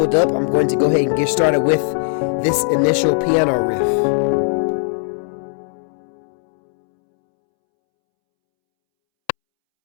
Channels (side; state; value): right; silent; 67 dB below the other